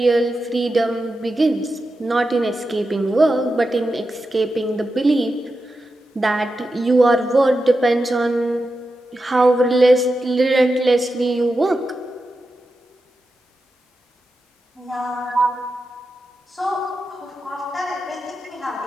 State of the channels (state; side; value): normal; both; correlation 0.90